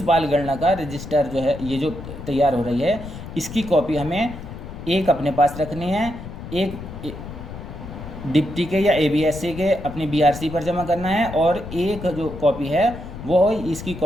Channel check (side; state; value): left; noise; rumble, 11 dB below the sound